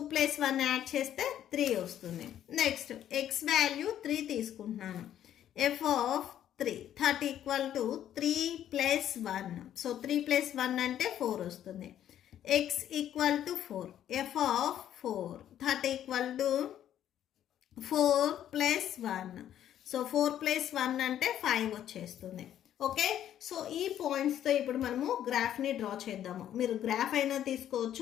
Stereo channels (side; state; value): right; quieter; 10.9 dB